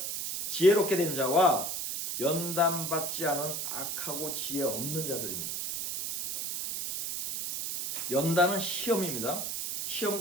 지혜롭게 된 자와 연단받지 않은 악하고 지혜 없는 자들입니다. 연단은 시험입니다.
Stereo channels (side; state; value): right; noise; hiss, 3 dB below the sound